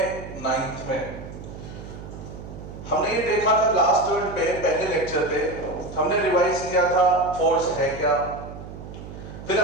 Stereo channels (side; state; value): right; noise; hum, 12 dB below the sound